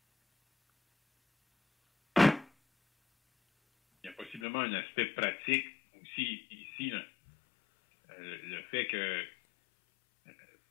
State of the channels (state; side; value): drops out; right; at 4.5 s